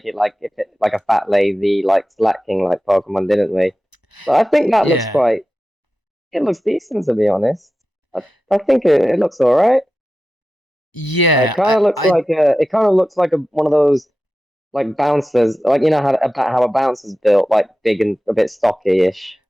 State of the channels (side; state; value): both; normal; correlation 0.93